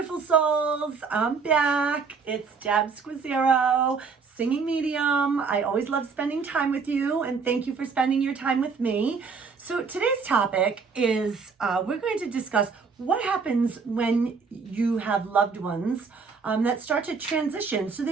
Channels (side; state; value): left; quieter; 5.2 dB